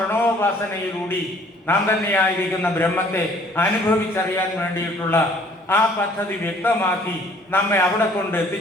നാം തന്നെയായിരിക്കുന്ന ബ്രഹ്മത്തെ അനുഭവിച്ചറിയാൻ വേണ്ടിയിട്ടുള്ള ആ പദ്ധതി വ്യക്തമാക്കി നമ്മെ അവിടെ കൊണ്ട്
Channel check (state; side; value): normal; both; correlation 0.57